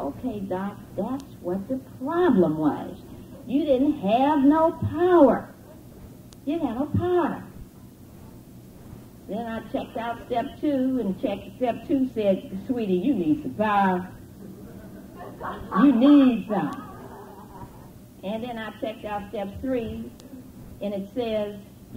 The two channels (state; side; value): identical; both; correlation 1.00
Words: Doc, that's what the problem was. You didn't have no power. You didn't have no power. Then I checked out step 2, and step 2 said, sweetie, you need some power. You need some. And then I checked out step 3, and it says,